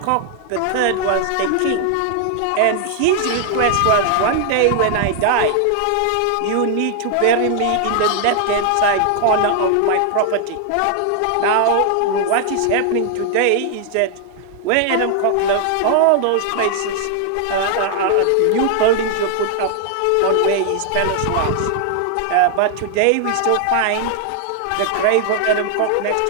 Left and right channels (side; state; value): both; different; correlation 0.00